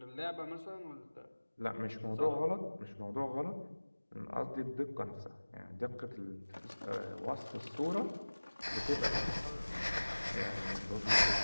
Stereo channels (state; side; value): inverted; both; correlation -1.00